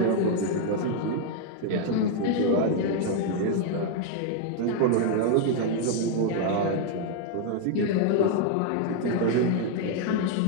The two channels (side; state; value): both; different; correlation 0.00